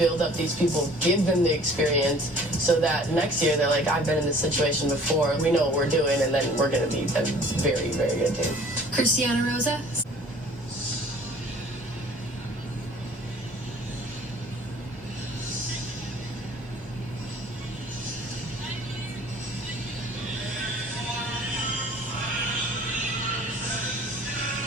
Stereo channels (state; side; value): normal; both; correlation 0.50